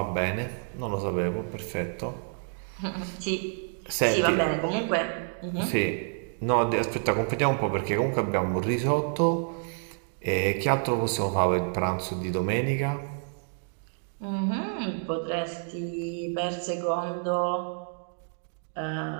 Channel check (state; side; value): silent; left; 59 dB below the other